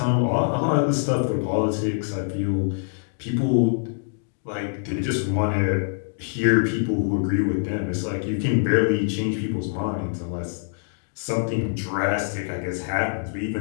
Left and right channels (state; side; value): silent; right; digital silence